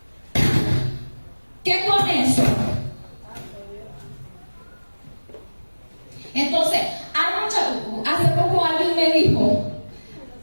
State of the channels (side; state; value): both; inverted; correlation -1.00